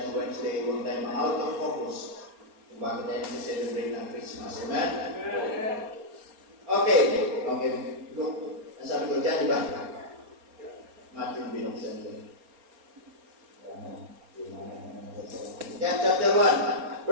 Wednesday, huwag tayo out of focus kung bakit tayo nag-celebrate ng Christmas. Amen? Okay. Look, ang sabi ko dyan, di ba? Matthew binuksan ko. John chapter 1,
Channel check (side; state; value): left; late; 4.3 ms